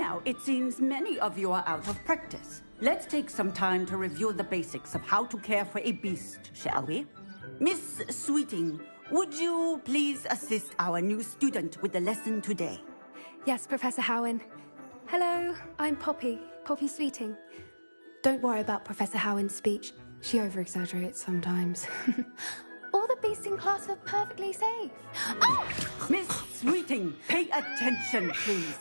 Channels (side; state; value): both; inverted; correlation -1.00